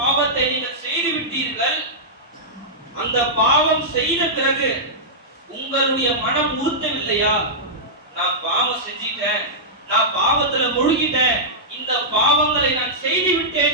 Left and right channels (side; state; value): both; normal; correlation -0.12